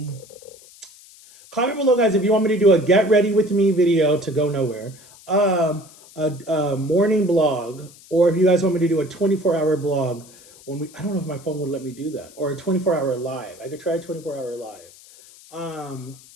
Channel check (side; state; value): left; noise; hiss, 23 dB below the sound